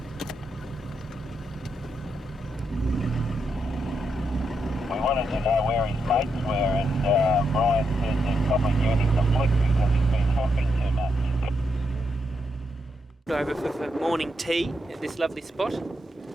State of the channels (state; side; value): normal; both; correlation 0.82